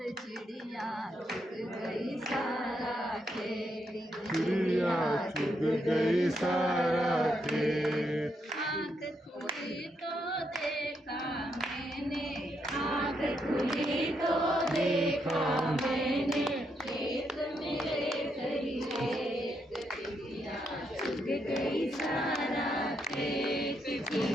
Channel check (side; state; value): both; normal; correlation 0.79